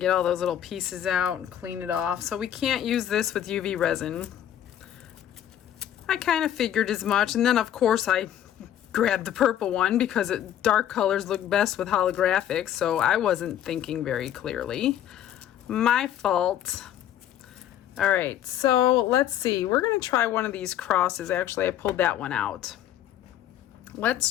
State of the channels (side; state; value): right; quieter; 11.0 dB